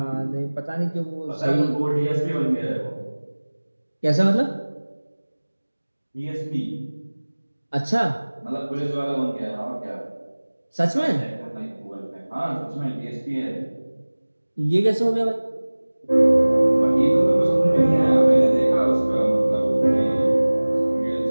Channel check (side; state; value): both; inverted; correlation -1.00